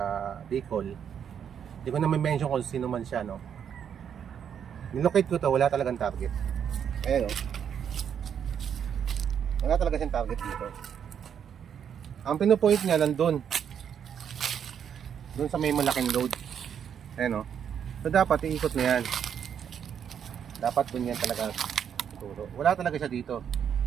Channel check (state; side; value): quieter; left; 8.2 dB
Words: Bicol. Hindi ko na mention kung sino man siya, no. Nilocate ko to, wala talagang target. Ayan, oh. Wala talaga siyang target dito. Ang pinupoint niya nandun. Doon sa may malaking load. Ayan, oh. So dapat iikot na yan. Dapat doon yan talaga siguro. Wala talaga siya dito.